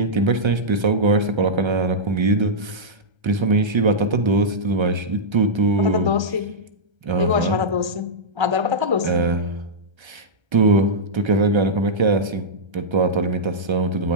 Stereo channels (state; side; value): late; left; 1.3 ms